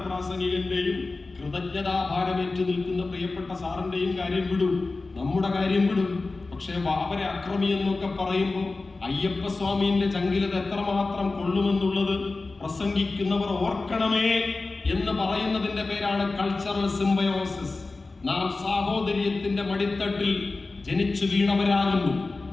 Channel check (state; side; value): quieter; right; 3.6 dB